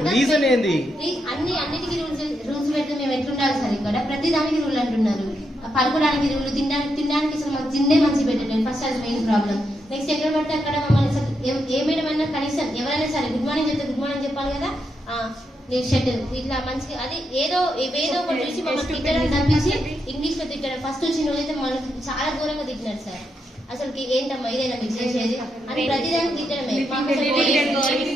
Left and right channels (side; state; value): both; normal; correlation 0.82